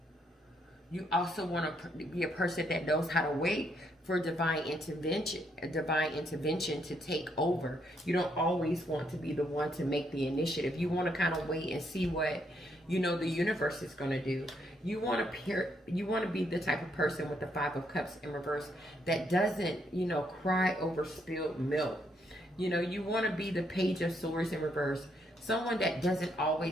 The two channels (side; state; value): both; normal; correlation 0.74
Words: You also want to be a person that knows how to wait for divine intervention to take over. You don't always want to be the one to make the initiative. You want to kind of wait and see what, you know, the universe is going to do. You want to be the type of person with the Five of Cups in reverse that doesn't, you know, cry over spilled milk. You know, you want to be the Page of Swords in reverse, someone that doesn't